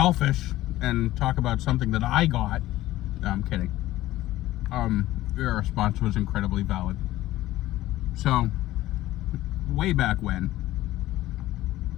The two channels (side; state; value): right; quieter; 15.7 dB